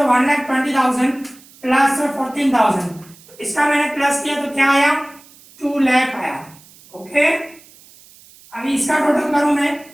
प्लस 14,000, तो इसका मैंने प्लस किया तो क्या आया 2 लाख आया। ओके, अभी इसका टोटल करूं मैं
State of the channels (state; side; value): noise; right; hiss, 25 dB below the sound